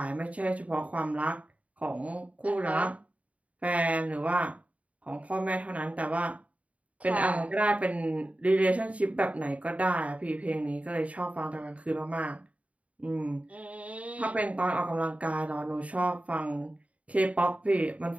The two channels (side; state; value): left; late; 0.068 ms